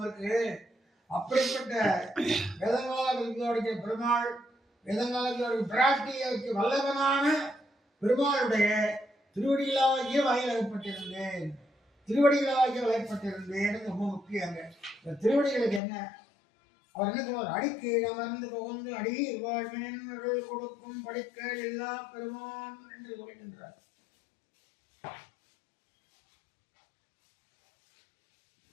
இருக்கு. அப்படிப்பட்ட வேதங்களால் பிரதிபாதிக்கிற பெருமாள், வேதங்களால் பிராட்டிக்கு வல்லவனான பெருமாளுடைய திருவடிகளாகிய வயலகப்பட்டிருந்தேன். திருவடிகளாகிய வயப்பட்டிருந்தேன் ரொம்ப முக்கியங்க. இந்த திருவடிகளுக்கு என்ன அவர் என்ன சொல்வார்? அடிக்கு அமர்ந்து புகுந்து அடி வாழ்வின் கொடுக்கும் படிக்க எல்லா பெருமான் என்று சொல்கின்றார்.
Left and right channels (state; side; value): drops out; right; at 15.8 s